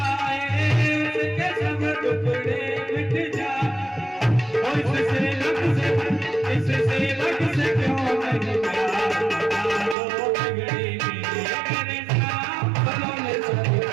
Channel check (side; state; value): left; drops out; at 10.0 s